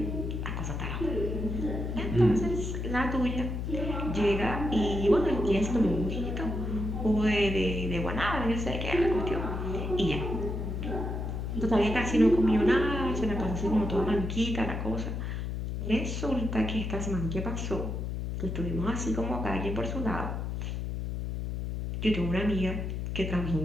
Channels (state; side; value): noise; left; hum, 3 dB below the sound